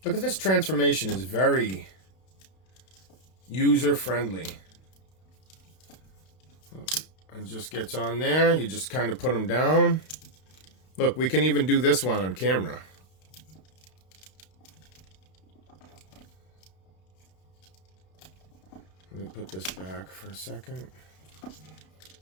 Look at this transformation. Is very user-friendly. It just gets on there. You just kind of put them down. Look, we can even do this one on camera. Let me put this back for a second.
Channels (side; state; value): right; late; 32 ms